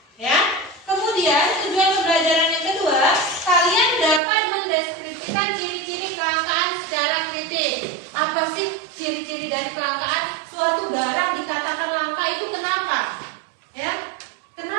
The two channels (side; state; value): left; drops out; at 4.2 s